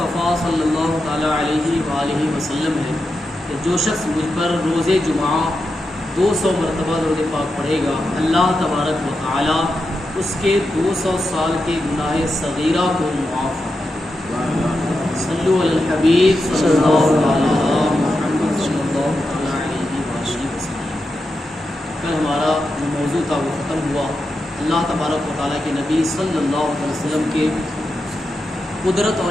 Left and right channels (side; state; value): both; normal; correlation 0.88